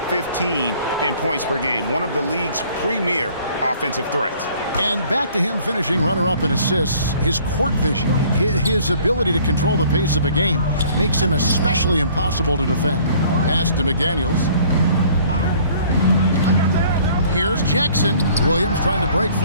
15 in points per game. One of the league's premier offensive threats. And back to him finishing runner-up in assists. His court vision, his ability to control the pace of a game makes him especially impossible to defend. Pass to McDaniels. Here's Jackson. Williams trying to break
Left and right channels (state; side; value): inverted; both; correlation -0.55